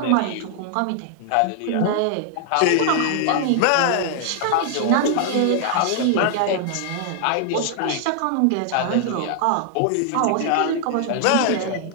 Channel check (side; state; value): both; different; correlation -0.01